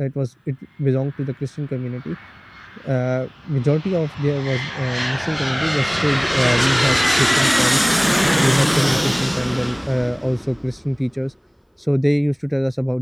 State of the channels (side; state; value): both; identical; correlation 1.00